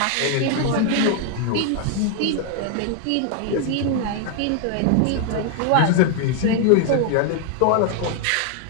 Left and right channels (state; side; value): different; both; correlation 0.00